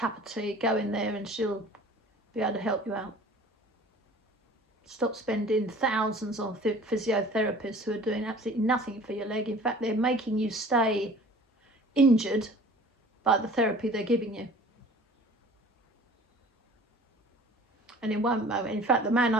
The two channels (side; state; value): both; normal; correlation 0.46